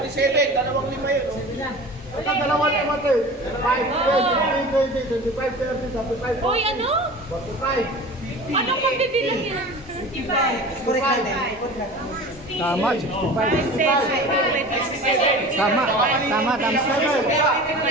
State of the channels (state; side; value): normal; both; correlation 0.37